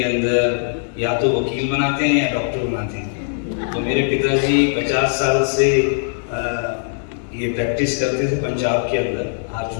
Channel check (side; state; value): right; silent; 66 dB below the other